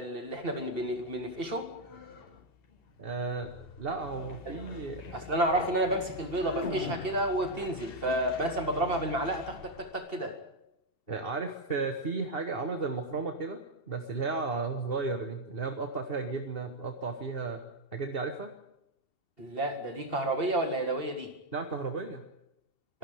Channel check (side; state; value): right; late; 2.7 ms